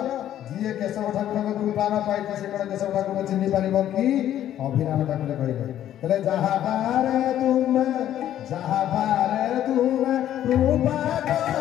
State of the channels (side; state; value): right; quieter; 11.6 dB